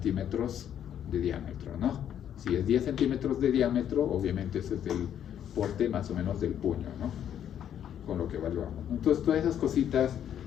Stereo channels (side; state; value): right; quieter; 9.8 dB